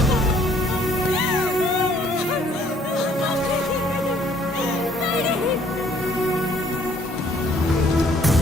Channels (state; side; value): normal; both; correlation 0.61